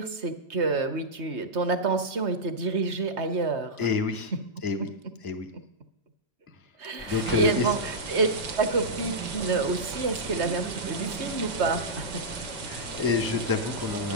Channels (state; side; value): late; left; 3.2 ms